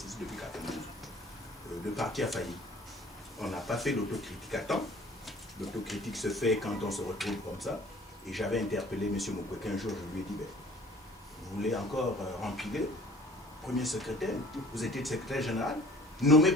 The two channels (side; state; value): both; normal; correlation 0.51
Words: depuis 92. Le parti a failli. On n'a pas fait l'autocritique à temps. L'autocritique se fait quand on se retrouve comme ça. Et j'avais interpellé M. Mukwege un jour, je lui ai dit, ben, vous voulez encore remplir premier secrétaire, vous étiez secrétaire général, nommé